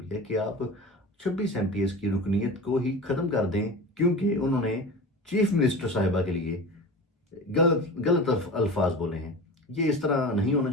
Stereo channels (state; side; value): normal; both; correlation 0.32